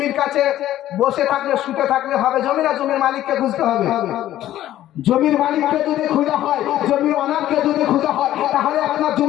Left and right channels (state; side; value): quieter; right; 13.2 dB